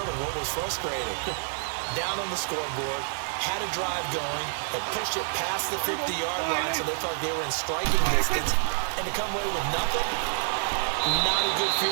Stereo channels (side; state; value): left; silent; 59 dB below the other